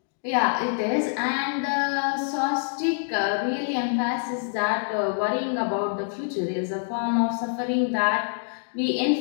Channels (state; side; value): silent; right; digital silence